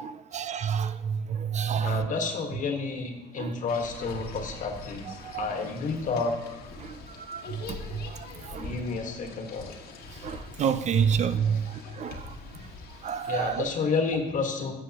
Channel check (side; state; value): both; normal; correlation 0.48